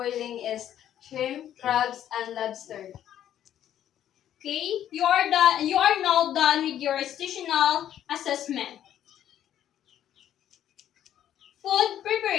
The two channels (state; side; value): quieter; right; 10.9 dB